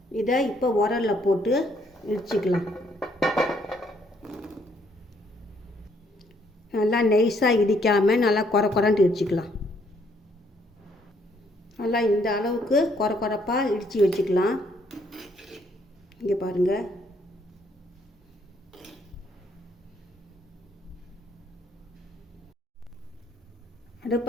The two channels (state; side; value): normal; both; correlation 0.69